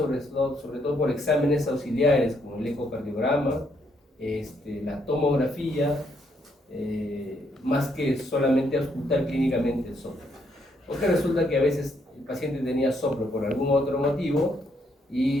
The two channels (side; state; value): both; normal; correlation 0.73